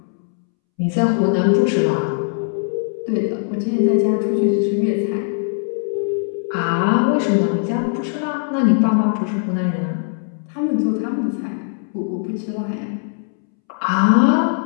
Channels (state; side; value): silent; right; 66 dB below the other